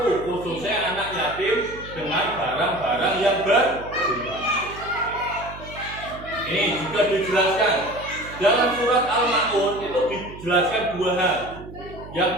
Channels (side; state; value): right; noise; hum, 15 dB below the sound